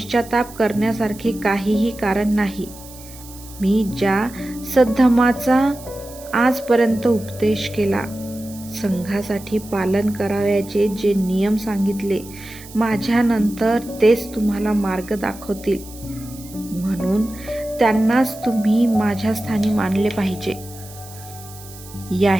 करण्यासारखे काहीही कारण नाही. मी ज्या सद्धर्माचा आजपर्यंत उपदेश केला, संघासाठी पालन करावयाचे जे नियम सांगितले, माझ्यानंतर तेच तुम्हाला मार्ग दाखवतील. म्हणून त्यांनाच तुम्ही माझ्या स्थानी मानले पाहिजे.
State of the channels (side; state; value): right; noise; hiss, 18 dB below the sound